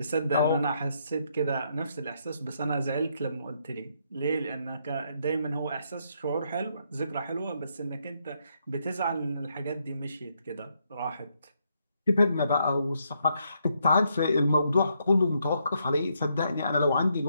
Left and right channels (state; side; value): inverted; both; correlation -0.76